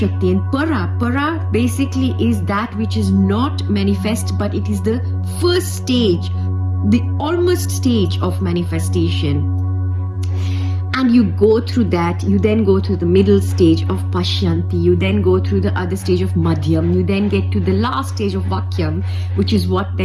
and para basically is that which is not manifest, but it is the first stage, the almost stage of manifestation. And you go through that, you then go through the middle stage of Pashyanti, you then go through the other stage of Madhyam, you then get to the last stage of Vakyam, which is what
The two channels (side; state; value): both; identical; correlation 1.00